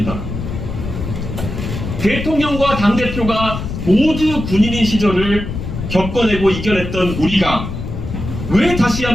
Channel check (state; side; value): noise; left; rumble, 6 dB below the sound